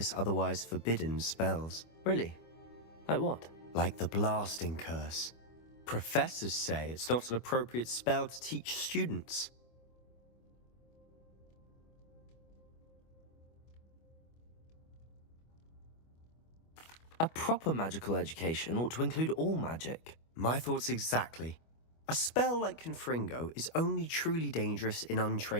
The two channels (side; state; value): right; late; 25 ms